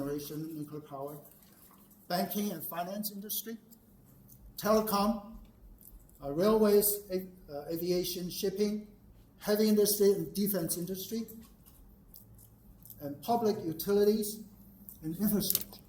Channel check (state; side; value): identical; both; correlation 1.00